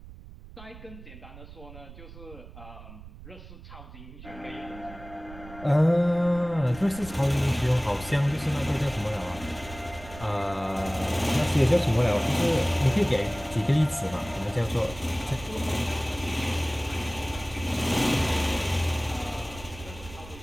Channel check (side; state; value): right; noise; rumble, 16 dB below the sound